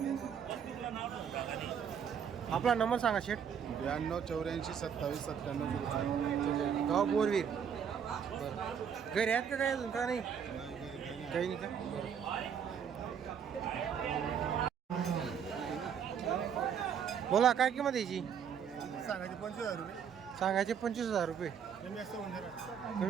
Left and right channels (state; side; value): quieter; left; 7.7 dB